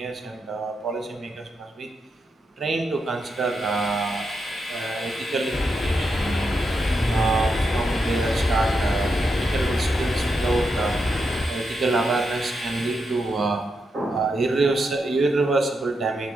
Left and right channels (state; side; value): normal; both; correlation 0.84